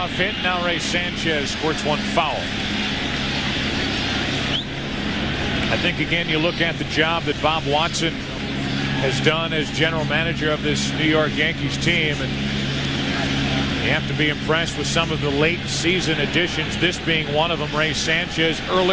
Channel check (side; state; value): both; identical; correlation 1.00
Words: hit. Now Ray Sanchez squirts one foul. I think, again, you look at the job that Bob Watson has done as general manager of this New York Yankees team, and you have to be impressed with some of the late season additions, this being one of them. Ray Sanchez,